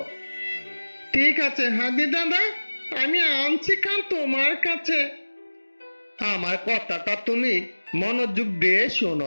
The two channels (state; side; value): inverted; both; correlation -1.00